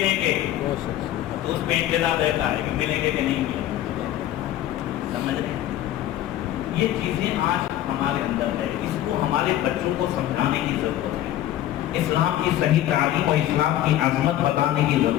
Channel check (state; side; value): quieter; right; 12.9 dB